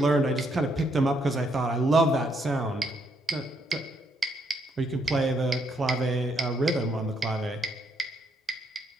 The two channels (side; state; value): both; normal; correlation 0.74